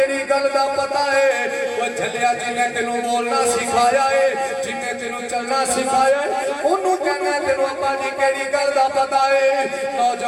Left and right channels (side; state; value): both; identical; correlation 1.00